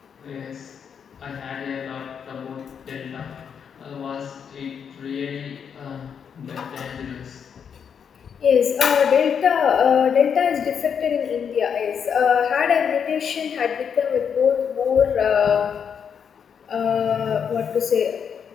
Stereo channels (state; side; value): quieter; right; 7.3 dB